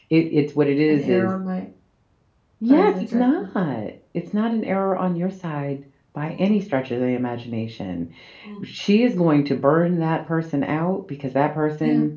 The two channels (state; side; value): identical; both; correlation 1.00